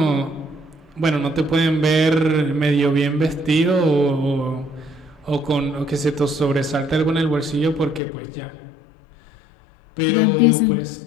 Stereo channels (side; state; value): right; drops out; at 8.0 s